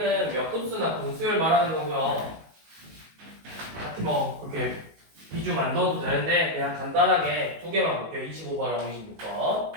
몇 급수나 분수열 말하는 거고요. 하여튼 뭐 그렇게 비주 만들어도 되는데 그냥 간단하게 두 개만 볼게요. 25번이랑 26번.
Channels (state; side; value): late; left; 19 ms